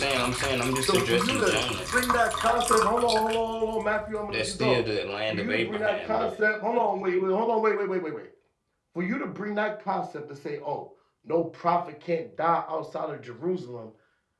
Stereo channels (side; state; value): both; identical; correlation 1.00